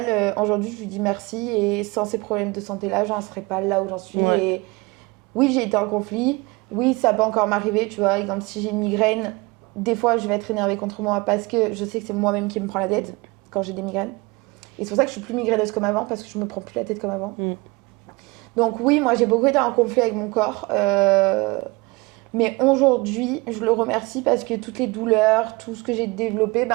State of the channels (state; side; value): quieter; left; 24.9 dB